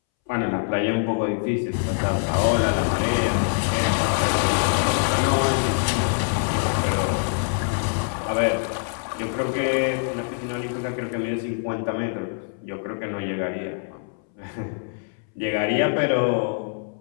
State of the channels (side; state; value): right; silent; 62 dB below the other